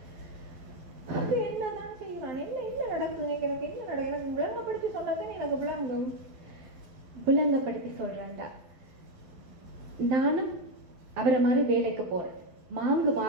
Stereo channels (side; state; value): left; late; 12 ms